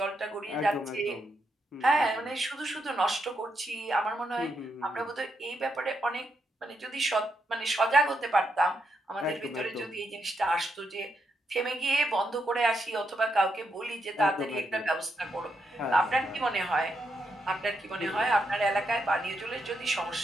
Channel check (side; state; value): both; normal; correlation 0.81